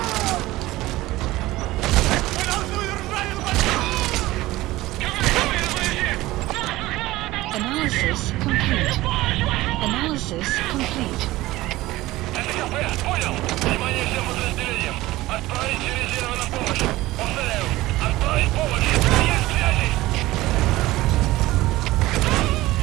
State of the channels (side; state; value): left; quieter; 17.9 dB